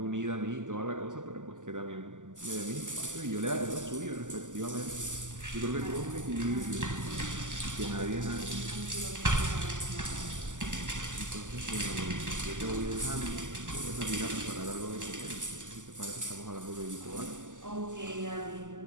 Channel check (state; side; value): late; left; 0.87 ms